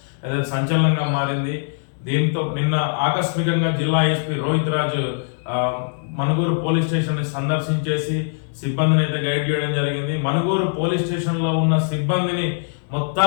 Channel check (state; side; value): silent; right; digital silence